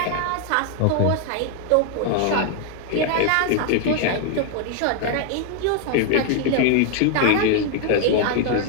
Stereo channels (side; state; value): both; different; correlation 0.00